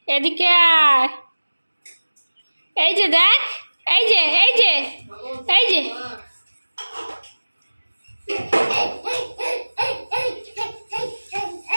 এদিকে আয়। এই যে দেখ, এই যে এই যে এই যে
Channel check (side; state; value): both; inverted; correlation -1.00